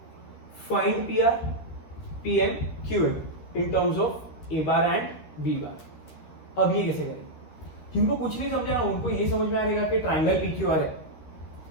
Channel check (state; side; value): late; right; 13 ms